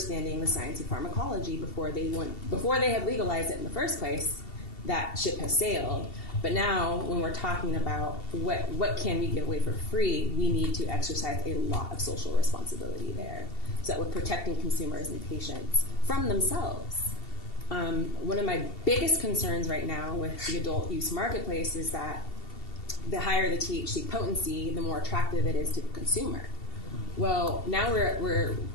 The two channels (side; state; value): right; late; 2.7 ms